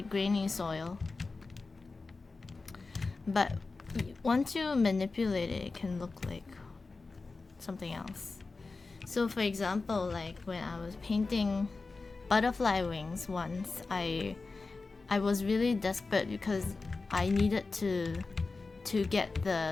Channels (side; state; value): right; quieter; 3.9 dB